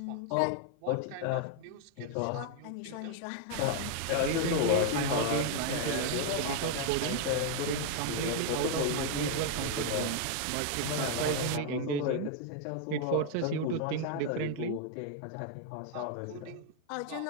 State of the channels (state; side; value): different; both; correlation 0.00